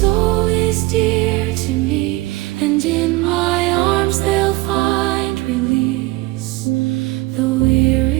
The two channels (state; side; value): quieter; left; 20.5 dB